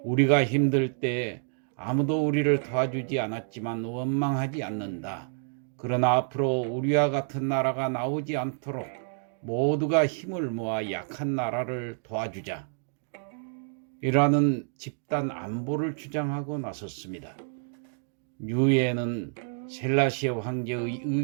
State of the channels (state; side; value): silent; left; digital silence